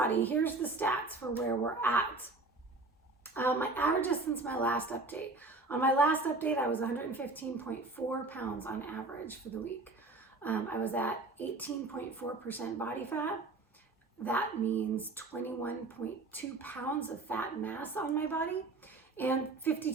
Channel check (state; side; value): quieter; left; 3.3 dB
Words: here's the stats for where we're at. My averages since my last update. On my last update, I was 115.4 pounds on average for the week. I was at 18.4% body fat. That means 21.2 pounds of fat mass on my body and